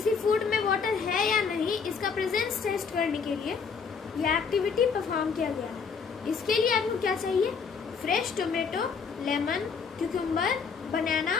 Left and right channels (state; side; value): quieter; right; 5.8 dB